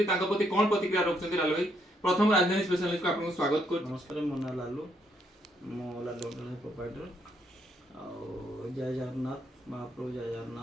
तांको प्रति कोन प्रतिक्रिया रखछथि लालू भाई। प्रथम राजधानी स्पेशल न्यूज को आपन स्वागत कर। नमस्कार, मो ना लालू, मो लालू प्रोपाइटर और जय जगन्नाथ महाप्रभु, जय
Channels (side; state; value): both; normal; correlation 0.73